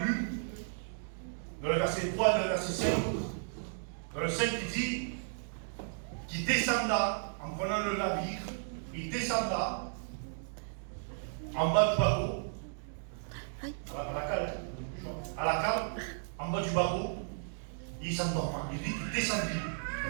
dans le verset 3 et le verset 5, dans le 5 il dit qu'il descendra en prenant le navire, il descendra en bas du bateau, à la cale, en bas du bateau, il s'endorma. Il dit qu'il descendit.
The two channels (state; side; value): silent; left; digital silence